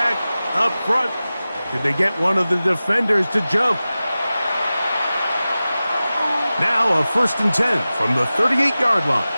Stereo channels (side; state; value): both; inverted; correlation -0.96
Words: up front. Did they get one of the defenders to jump? Now a 1st and 10 from the 38-yard line.